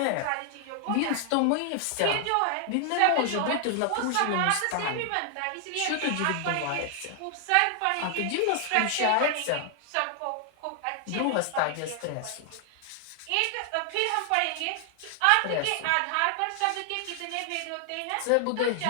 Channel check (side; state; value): both; different; correlation 0.00